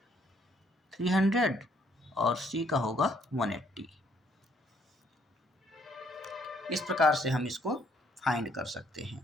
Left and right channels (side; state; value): both; normal; correlation 0.67